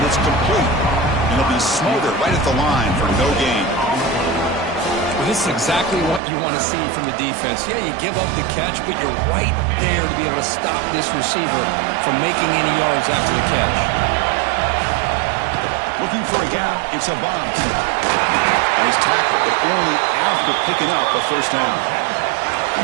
it's complete. And it'll be smothered right at the line for no gain. Well, this is exactly what you want to see from the defense. Yeah, you give up the catch, but you're right there to be able to stop this receiver from making any yards after the catch. Looking for a gap. It's a bomb. And he's tackled, but only after picking up a first down.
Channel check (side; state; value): left; drops out; at 6.2 s